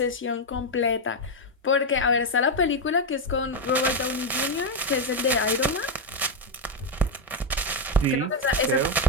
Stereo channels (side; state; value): both; normal; correlation 0.05